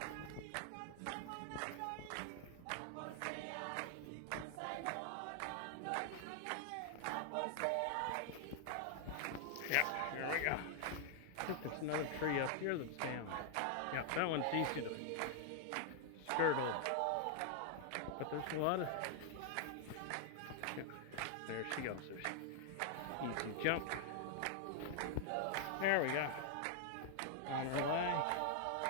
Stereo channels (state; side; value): different; both; correlation 0.00